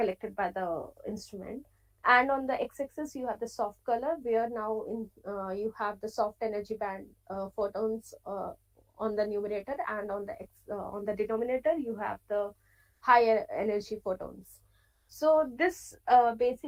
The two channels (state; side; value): identical; both; correlation 1.00